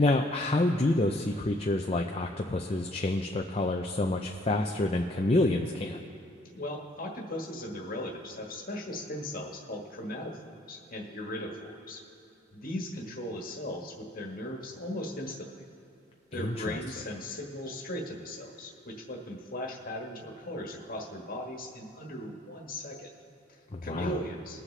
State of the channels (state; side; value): normal; both; correlation 0.62